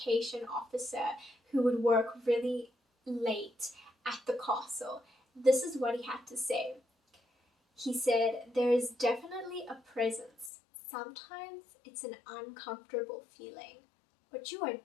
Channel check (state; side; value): drops out; right; at 10.5 s